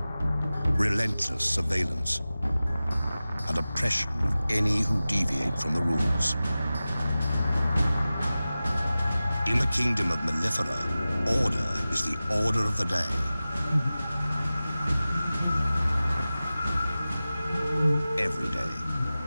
Relentless surveillance and oppression of any who deviate from the rules. In the kingdom of Mellifera, order is the order of the day. Every day.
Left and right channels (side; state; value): both; inverted; correlation -0.96